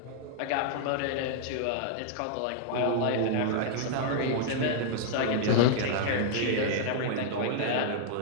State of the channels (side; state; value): both; different; correlation -0.01